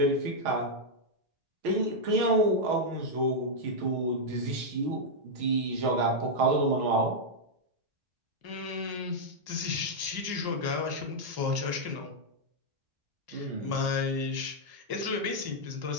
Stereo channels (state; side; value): late; left; 1.1 ms